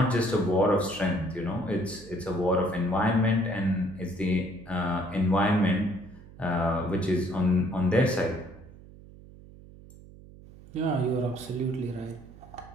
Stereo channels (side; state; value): right; noise; hum, 20 dB below the sound